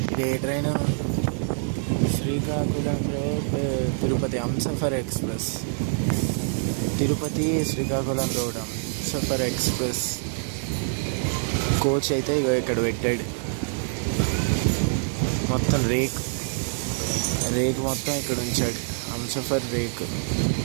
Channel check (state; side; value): silent; left; digital silence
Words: ఏ train? Srikakulam road Tirupati Humsafar express. Tirupati Srikakulam road Humsafar express coach అయితే ఇక్కడ పెట్టాడు. మొత్తం రేక్ మొత్తం ఇక్కడ ఉంచాడు. హంసఫర్ రేక్